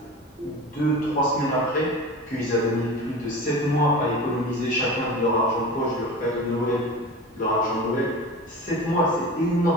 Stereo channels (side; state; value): both; normal; correlation 0.32